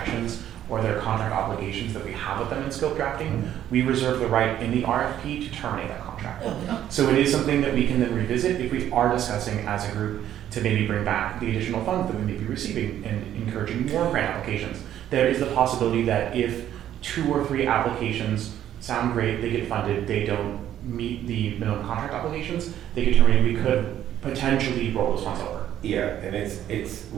or their contract obligations that we have with them in scope drafting, we reserve the right in the RFP to terminate that contract. So it is something that we can then revisit if we are discussing as a group to maybe bring back the additional funds that we may be receiving and encouraging more grant applications. There is the possibility that if 2 or 3 applications sound great, they get funded, they don't meet the minimum contract obligations, they get terminated, we could potentially roll those funds over. Yeah, and it's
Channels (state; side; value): quieter; left; 11.3 dB